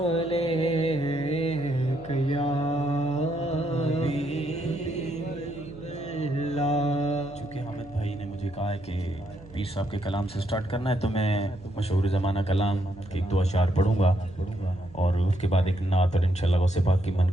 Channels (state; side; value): noise; right; hum, 20 dB below the sound